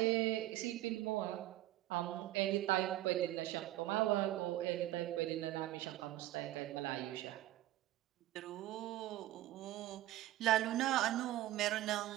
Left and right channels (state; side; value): quieter; left; 15.0 dB